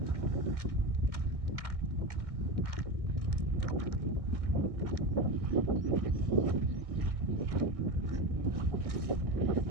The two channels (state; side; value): late; left; 1.6 ms